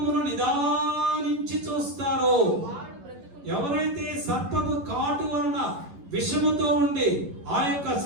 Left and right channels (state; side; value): late; left; 11 ms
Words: నిదానించి చూస్తారో, ఎవరైతే సర్పము కాటు వలన విషముతో ఉండి ఆ యొక్క